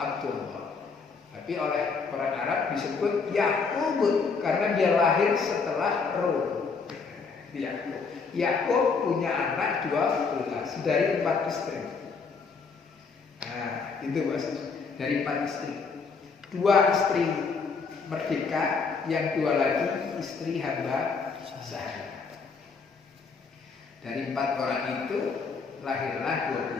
Tapi oleh orang Arab disebut Yakub karena dia lahir setelah Rum. Yakub punya anak 12 dari 4 istri. Nah, itu maksudnya dari 4 istri. 2 istri merdeka, yang 2 lagi istri hamba sahaya. Dari 4 orang itu lahirlah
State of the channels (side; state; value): right; quieter; 5.0 dB